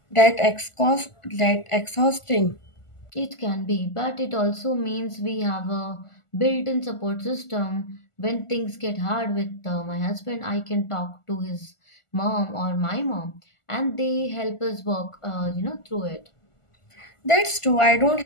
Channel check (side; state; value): right; late; 1.4 ms